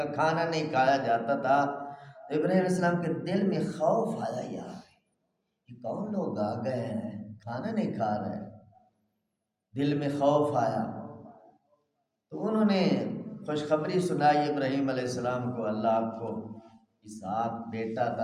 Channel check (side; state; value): both; identical; correlation 1.00